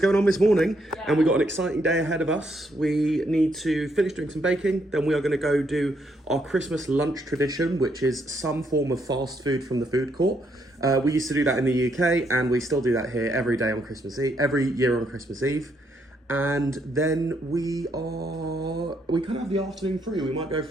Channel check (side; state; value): both; normal; correlation 0.75